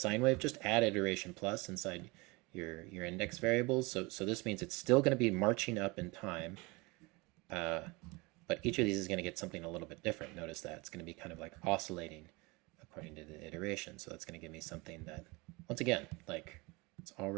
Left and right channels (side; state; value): left; quieter; 25.5 dB